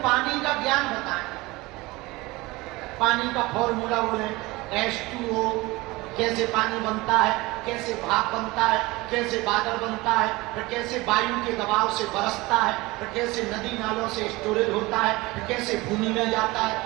पानी का ज्ञान बताएं। पानी का फॉर्मूला बोले, H2O, कैसे पानी बनता है, कैसे भाप बनता है, कैसे बादल बनता है, फिर कैसे वायु के दबाव से बरसता है, फिर कैसे नदी नालों से स्टोरेज होता है, फिर कैसे भूमि में जाता है,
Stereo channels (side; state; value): left; quieter; 21.6 dB